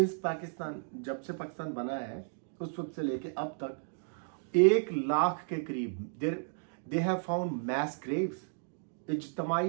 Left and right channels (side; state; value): left; silent; digital silence